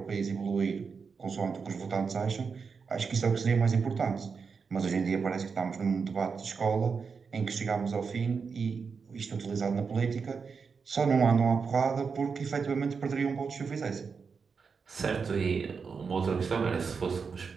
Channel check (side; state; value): left; quieter; 5.5 dB